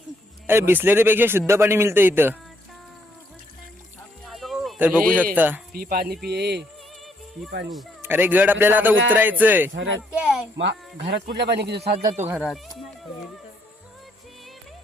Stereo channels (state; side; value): normal; both; correlation 0.72